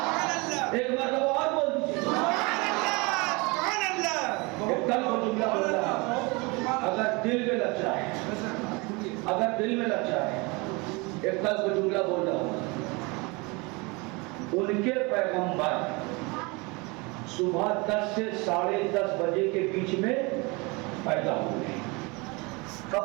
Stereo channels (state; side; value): quieter; left; 27.1 dB